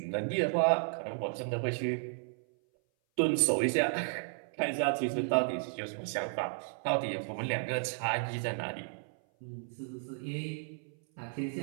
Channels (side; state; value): left; silent; 55 dB below the other